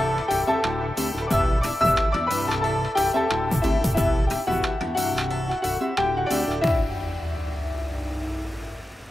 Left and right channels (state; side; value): normal; both; correlation 0.92